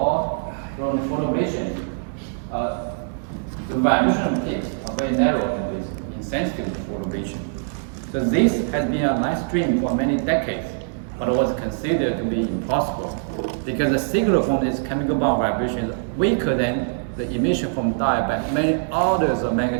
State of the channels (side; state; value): left; silent; 63 dB below the other